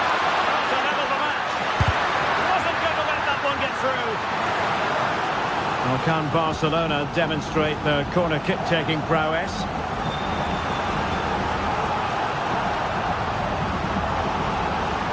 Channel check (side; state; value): both; identical; correlation 1.00